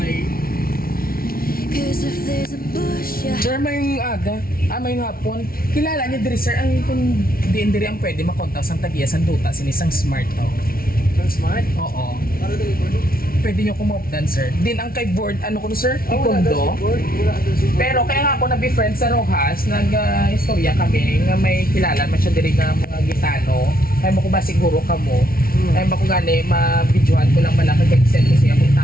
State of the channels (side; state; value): right; late; 0.43 ms